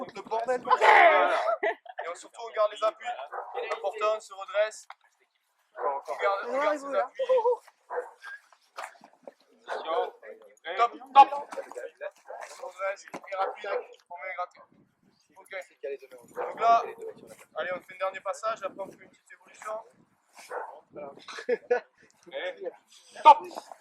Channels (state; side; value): identical; both; correlation 1.00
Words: le bordel. Et surtout, on garde les appuis. Important, on se redresse. On garde ses appuis. Top, top. On se redresse, et rapide, on met gratter. Ok. Donc là, allez, on fait un dernier passage, après on fait une petite évolution. Et top.